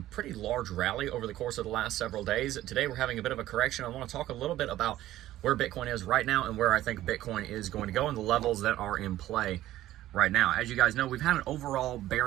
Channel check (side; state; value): left; quieter; 14.3 dB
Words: large rally over the course of the last several days. Today we're having a bit of a correction. I want to talk a little bit about where Bitcoin is right now and where I think Bitcoin is going to go and the levels that are in play right now. As you guys know, we've had an overall